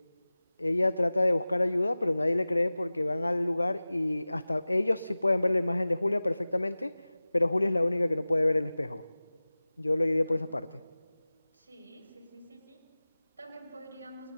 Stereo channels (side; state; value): both; inverted; correlation -0.98